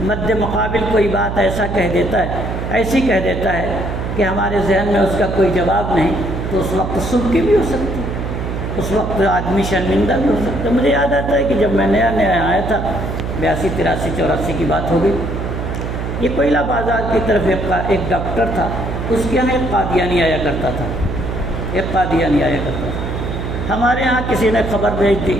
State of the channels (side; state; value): right; noise; hum, 4 dB below the sound